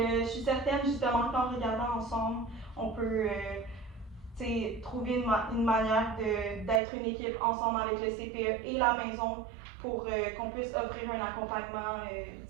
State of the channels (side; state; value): left; drops out; at 6.8 s